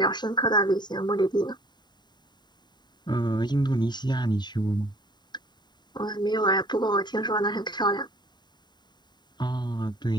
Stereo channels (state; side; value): late; right; 0.21 ms